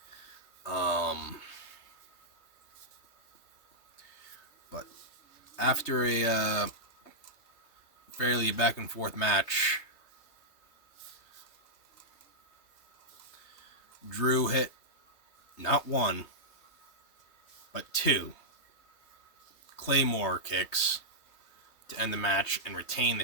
But after a fairly back and forth match, Drew hit not one, but two Claymore kicks to end the match and retain the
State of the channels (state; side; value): late; right; 3.3 ms